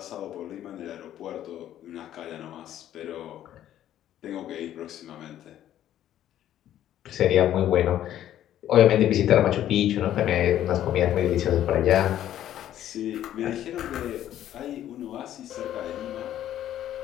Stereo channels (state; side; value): quieter; right; 11.8 dB